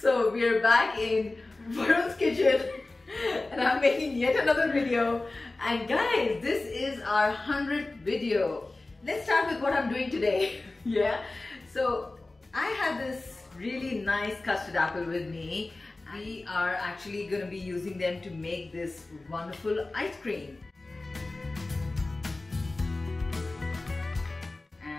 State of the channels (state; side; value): quieter; right; 3.1 dB